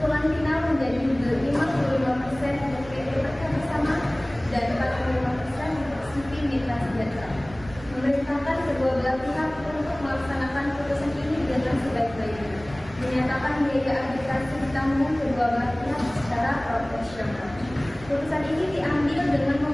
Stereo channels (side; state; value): right; noise; rumble, 18 dB below the sound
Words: final menjadi 55% untuk PT Berkah Bersama dan 45% untuk CV Mitra Sejahtera. Memerintahkan kedua belah pihak untuk melaksanakan putusan ini dengan sebaik-baiknya. Menyatakan biaya arbitrase ditanggung kedua belah pihak secara proporsional. Putusan ini diambil dengan